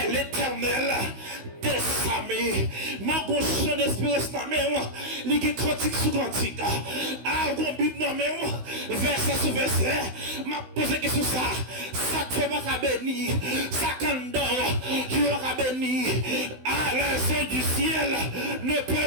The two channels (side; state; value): left; late; 16 ms